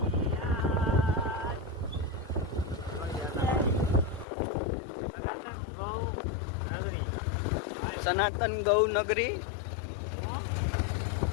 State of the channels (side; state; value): right; drops out; at 4.2 s